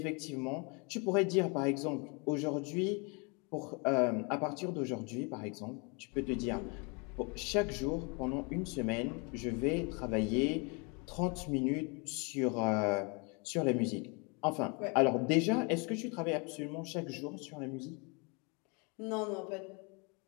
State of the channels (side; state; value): right; quieter; 32.1 dB